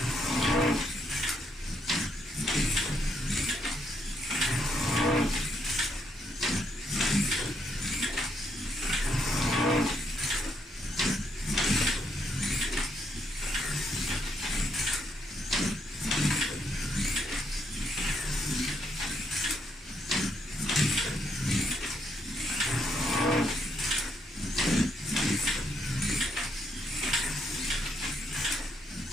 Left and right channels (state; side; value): normal; both; correlation 0.75